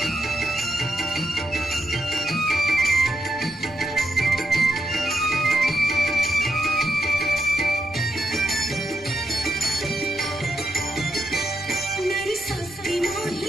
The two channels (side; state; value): left; noise; hum, 27 dB below the sound